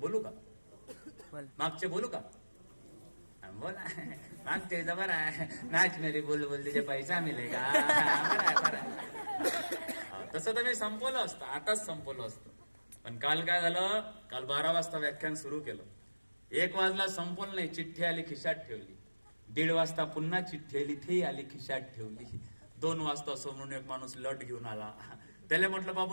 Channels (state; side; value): inverted; both; correlation -1.00